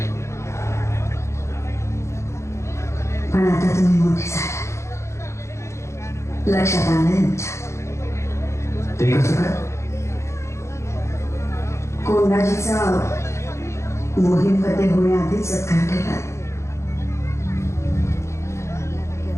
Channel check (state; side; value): late; right; 0.14 ms